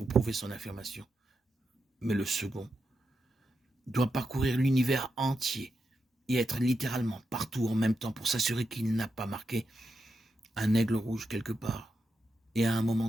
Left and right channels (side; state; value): both; normal; correlation 0.86